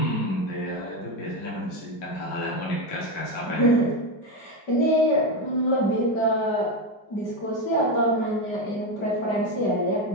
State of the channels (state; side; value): late; right; 5.1 ms